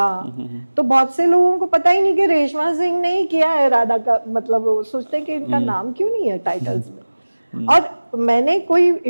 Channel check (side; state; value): both; inverted; correlation -1.00